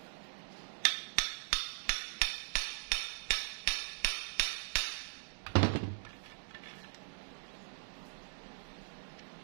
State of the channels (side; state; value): left; silent; digital silence